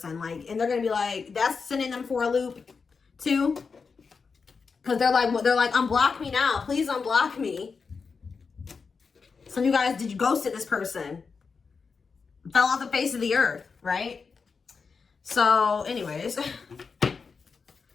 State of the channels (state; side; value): quieter; right; 5.1 dB